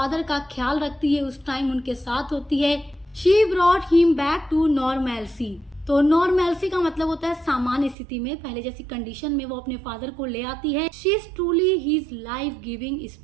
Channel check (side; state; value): left; drops out; at 8.0 s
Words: का ख्याल रखती है, उस टाइम उनके साथ होती है। She brought him back to normality. तो नॉर्मैलिटी का मतलब होता है सामान्य स्थिति में, पहले जैसी कंडीशन में वो अपने फादर को ले आती है। She is truly his life giving